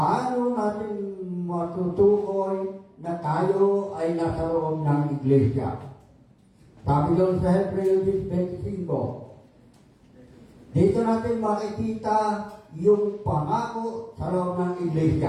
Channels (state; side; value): identical; both; correlation 1.00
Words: natin matutukoy na tayo ay nasa loob ng iglesia? Sabi doon sa Hebreo 25, dito natin makikita yung pangako sa loob ng